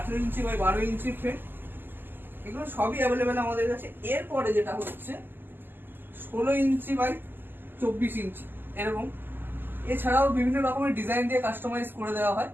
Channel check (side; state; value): left; late; 0.094 ms